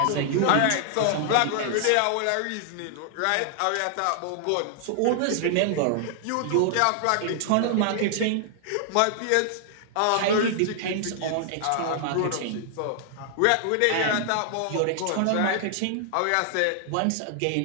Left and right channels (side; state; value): both; different; correlation 0.00